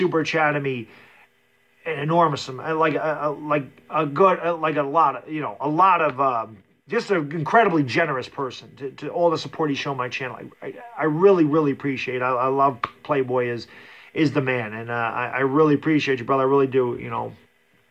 chatting me an enormous amount, like a lot of just an incredibly generous person to all the support he's shown my channel. I really, really appreciate it. I love Playboy is the man, and I really appreciate you, brother. I really do. You know,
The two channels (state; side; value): identical; both; correlation 1.00